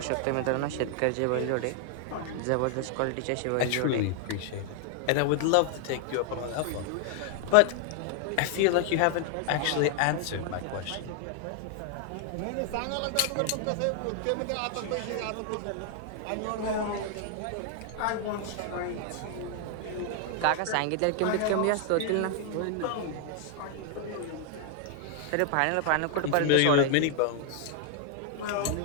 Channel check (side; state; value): both; different; correlation 0.00